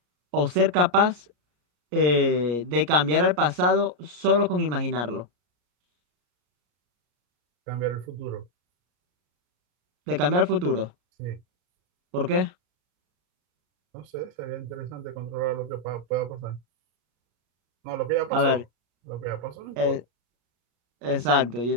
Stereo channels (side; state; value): left; late; 34 ms